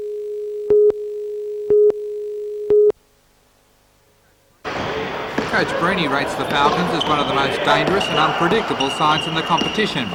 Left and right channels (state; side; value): identical; both; correlation 1.00